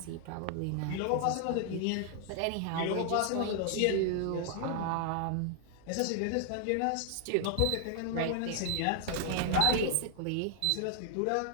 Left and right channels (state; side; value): different; both; correlation 0.00